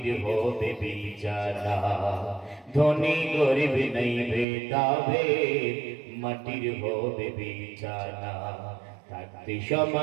হবে বিছানা, ধনী গরিব নেই ভেদাভে, মাটির হবে বিছানা। থাকতে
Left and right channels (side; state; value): left; drops out; at 4.5 s